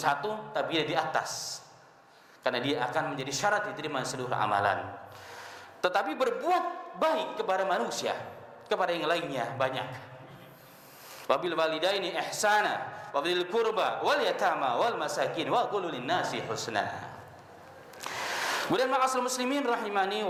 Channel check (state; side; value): identical; both; correlation 1.00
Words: tapi dia di atas, karena dia akan menjadi syarat diterima seluruh amalan. Tetapi berbuat baik kepada manusia, kepada yang lainnya banyak. Wabil walidaini ihsana wabil qurba wal yatama wal masakin wa qulu lin-nasi husna. Kemudian ma'asal muslimin rahimani